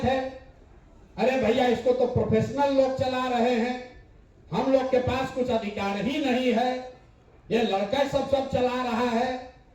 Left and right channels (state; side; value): identical; both; correlation 1.00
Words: अरे भैया इसको तो प्रोफेशनल लोग चला रहे हैं, हम लोग के पास कुछ अधिकार ही नहीं है, ये लड़का सब चला रहा है।